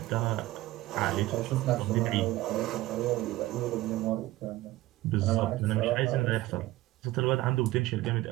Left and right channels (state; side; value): quieter; left; 17.4 dB